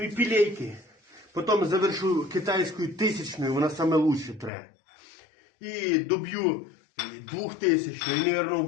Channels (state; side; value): drops out; right; at 4.5 s